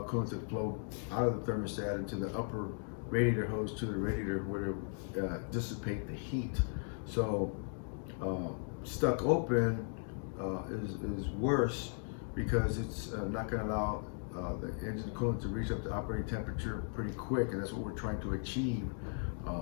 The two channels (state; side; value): silent; right; 53 dB below the other